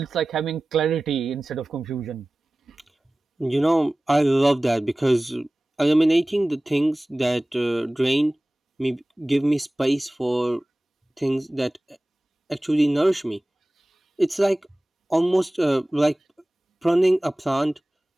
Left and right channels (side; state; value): both; normal; correlation 0.98